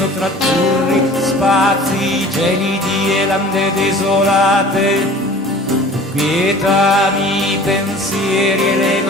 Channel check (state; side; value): normal; both; correlation 0.44